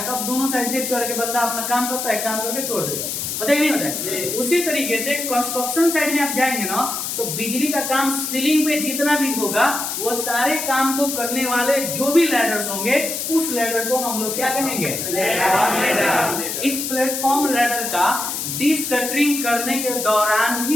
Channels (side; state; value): left; noise; hiss, 3 dB below the sound